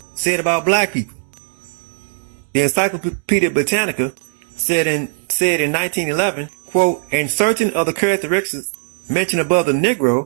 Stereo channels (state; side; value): silent; left; 62 dB below the other